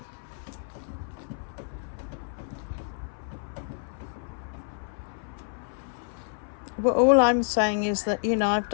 Well, all I'm saying is that, you know, I've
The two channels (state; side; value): silent; right; 59 dB below the other